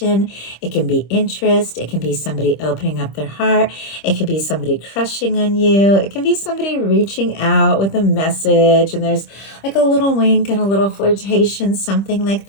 it can be interest, it can be somebody opening up their heart, it could be somebody crushing on you, it can be somebody reaching out with a message, and there's like a little wink and a little flirtation, something like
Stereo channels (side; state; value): right; late; 25 ms